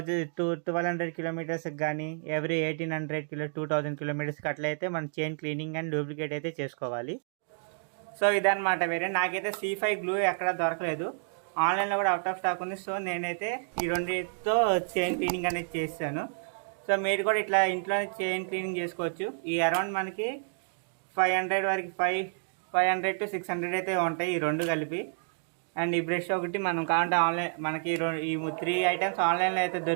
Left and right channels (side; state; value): left; silent; digital silence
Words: కిలోమీటర్స్కి కానీ ఎవ్రీ 2000 కిలోమీటర్స్కి అట్లయితే మనం చైన్ క్లీనింగ్ అండ్ లూబ్లికేట్ అయితే చేసుకోవాలి. సో ఇదన్నమాట. వేరే నాకైతే C5 గ్లూ ఎక్కడ దొరకలేదు, ఆన్లైన్లో కూడా అవుట్ ఆఫ్ స్టాక్ ఉంది. సో నేనైతే ఈ రెండింటితో చైన్ క్లీనింగ్ అనేది చేస్తాను. సో మీరు కూడా ఇట్లా ఇంట్లోనే చైన్ క్లీనింగ్ చేసుకోవచ్చు. ఈ అరౌండ్ మనకి 500 వరకు 500 to 600 అయితే ఉంటాయి ఈ రెండు కలిపి. అండ్ ఈ బ్రష్ ఒకటి మనం కావాలంటే ఆన్లైన్ మనకి ఈ 3 ఐటమ్స్ ఆన్లైన్లో అయితే